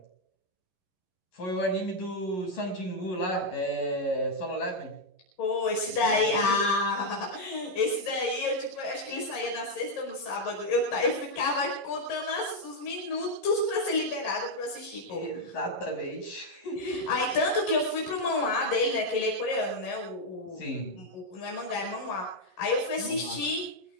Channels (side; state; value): right; late; 11 ms